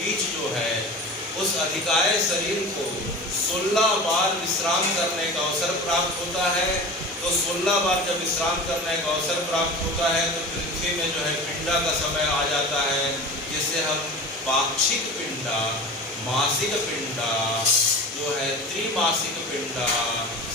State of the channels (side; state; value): both; normal; correlation 0.34